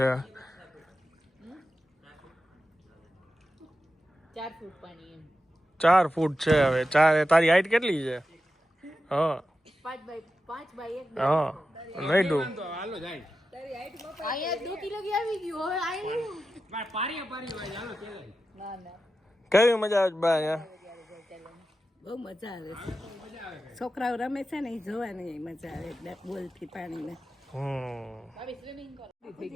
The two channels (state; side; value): normal; both; correlation 0.91